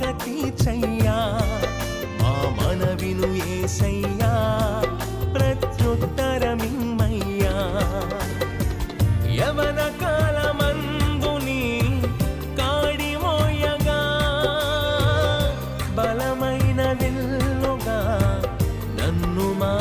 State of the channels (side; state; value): both; identical; correlation 1.00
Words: తీర్చయ్యా మా మనవిను యేసయ్యా ప్రత్యుత్తరమిమ్మయ్యా యవన కాలమందుని కాడి మోయగా బలమైన విల్లుగా నన్ను